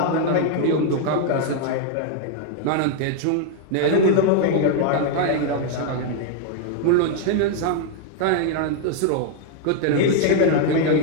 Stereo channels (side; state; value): both; different; correlation 0.00